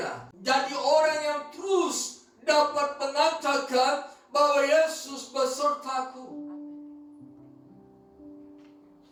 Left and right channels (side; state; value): both; identical; correlation 1.00